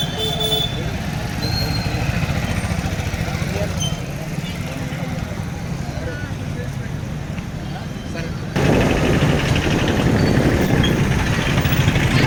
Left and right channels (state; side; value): identical; both; correlation 1.00